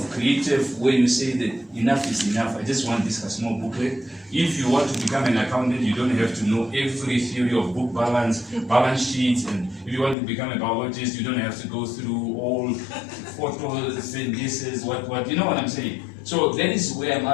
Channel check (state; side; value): drops out; right; at 10.2 s